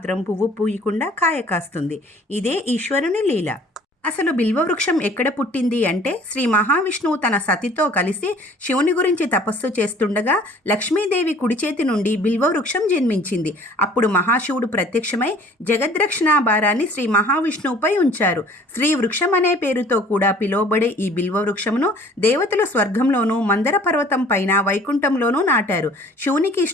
పువ్వు పూయకుండా కాయ కాస్తుంది. ఇదే ఈశ్వరుని లీల. అసలు బిల్వవృక్షం ఎక్కడ పుట్టింది అంటే, శ్రీ మహావిష్ణువు తన సతితో కలిసి శివుని గురించి తపస్సు చేస్తుండగా లక్ష్మీదేవి కుడి చేతి నుండి బిల్వవృక్షం జన్మించింది. అప్పుడు మహాశివుడు ప్రత్యక్షమై జగద్రక్షణ భారాన్ని శ్రీ మహావిష్ణువుపై ఉంచారు. శ్రీ వృక్షం అనే పేరుతో కూడా పిలువబడే ఈ బిల్వవృక్షమును దేవతలు స్వర్గంలోనూ, మందర పర్వతం పైన వైకుంఠంలోనూ నాటారు. శివునికి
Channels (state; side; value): normal; both; correlation 0.52